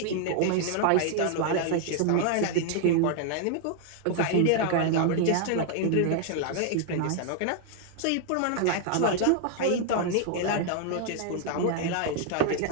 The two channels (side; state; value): both; different; correlation 0.00